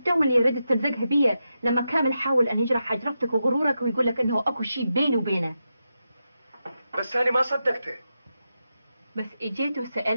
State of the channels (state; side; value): inverted; both; correlation -0.88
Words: اللي ردت تلزقها بيا لما كامل حاول أن يجرح حجرتك وغرورك ويقول لك إنه أكو شيء بيني وبينه؟ بس أنا ما صدقته. بس إجيت